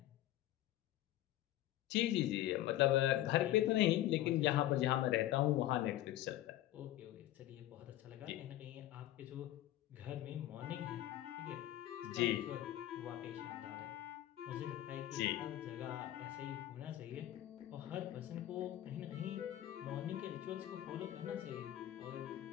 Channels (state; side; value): quieter; right; 14.0 dB